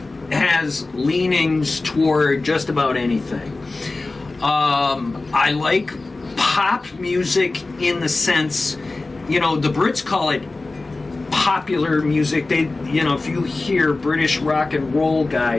has leanings toward just about anything. I like pop music in the sense, the Brits call it popular music. They, if you hear British rock and roll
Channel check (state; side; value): quieter; right; 3.3 dB